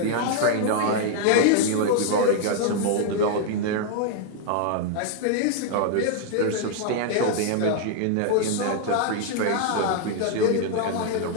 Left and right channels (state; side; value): different; both; correlation 0.00